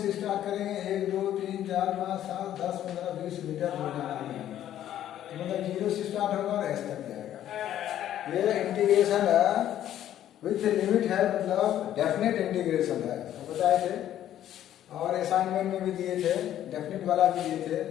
स्टार्ट करेंगे, 1 2 3 4 5 7 10 15 20 मीटर हो जाएगा, मतलब 0 से स्टार्ट होगा और एस तक जाएगा। ये इंटीग्रेशन विथ लिमिट है, मतलब डेफिनेट इंटीग्रेशन है, तो बताए थे। और असाइनमेंट में भी दिए थे, डेफिनेट वाला भी दिए थे,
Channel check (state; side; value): quieter; right; 11.6 dB